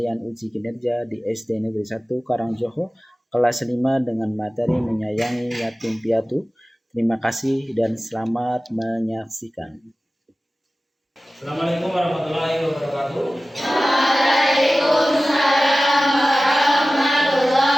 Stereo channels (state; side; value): normal; both; correlation 0.96